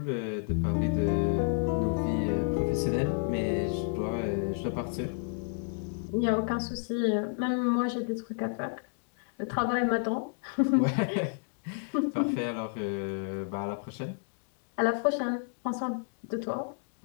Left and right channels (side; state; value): right; silent; digital silence